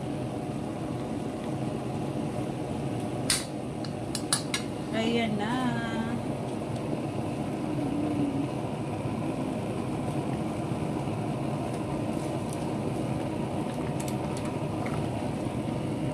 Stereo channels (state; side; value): identical; both; correlation 1.00